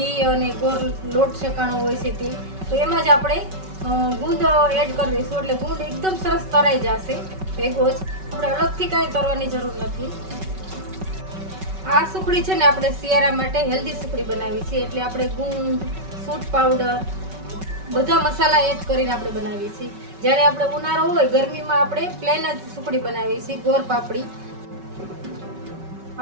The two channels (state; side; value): late; left; 5.3 ms